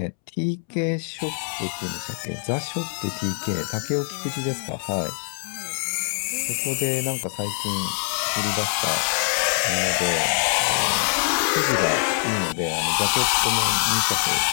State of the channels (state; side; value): silent; right; 63 dB below the other